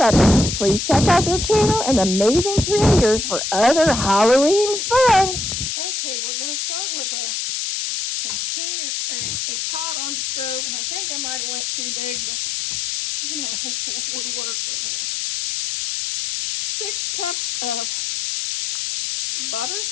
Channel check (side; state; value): left; noise; hiss, 2 dB below the sound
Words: Please check out their channel and amazing creators for other Halloween fun. Okay, we're going to start with a container, a pot on the stove, and I think I might have went too big, but you know, we'll work with it. 6 cups of butter.